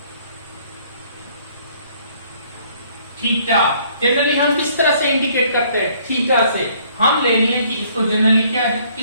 theta. Generally हम किस तरह से इंडिकेट करते हैं, थीटा से। हम ले लिए कि इसको जनरली क्या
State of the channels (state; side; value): inverted; both; correlation -0.62